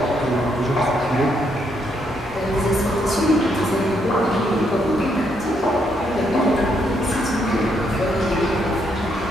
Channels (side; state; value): both; normal; correlation 0.75